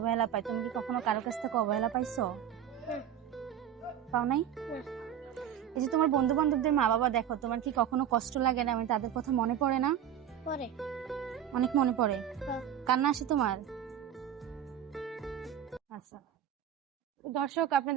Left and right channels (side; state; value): left; quieter; 9.7 dB